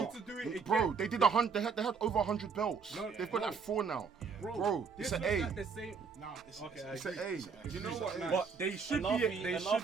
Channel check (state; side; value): quieter; left; 5.4 dB